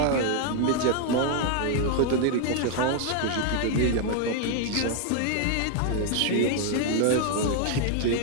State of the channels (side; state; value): both; different; correlation 0.00